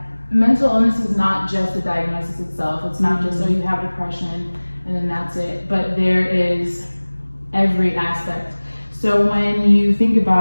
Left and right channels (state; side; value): inverted; both; correlation -1.00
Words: mental illness is not just the diagnosis itself. It's not just, oh, you have depression and then that's it, but there is every aspect. So when you think